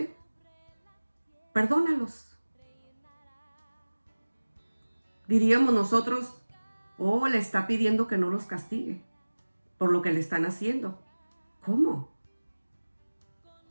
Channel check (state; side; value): inverted; both; correlation -1.00